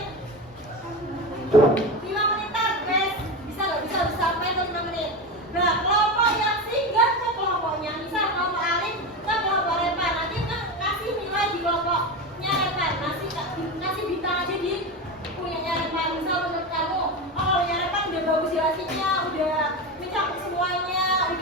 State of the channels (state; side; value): normal; both; correlation 0.20